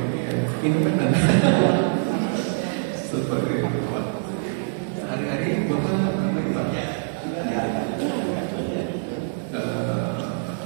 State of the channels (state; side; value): silent; left; digital silence